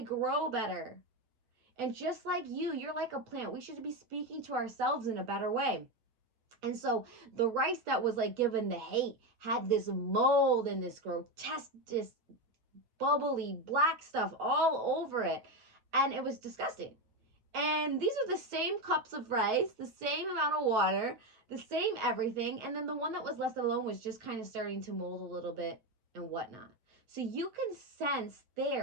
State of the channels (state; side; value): late; left; 7.9 ms